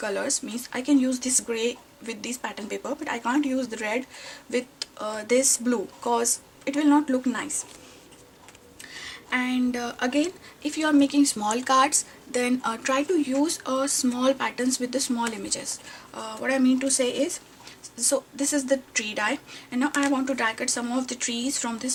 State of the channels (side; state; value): both; identical; correlation 1.00